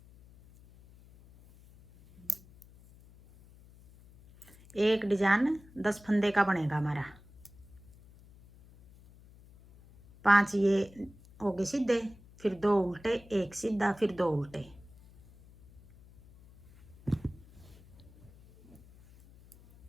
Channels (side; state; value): left; noise; hum, 24 dB below the sound